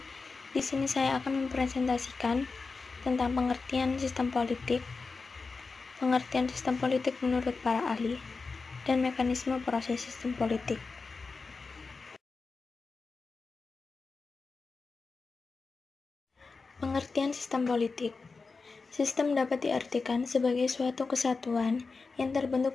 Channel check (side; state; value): right; quieter; 4.3 dB